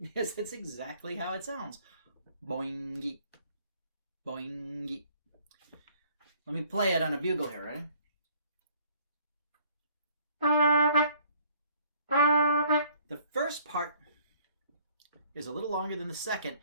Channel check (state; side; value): inverted; both; correlation -0.60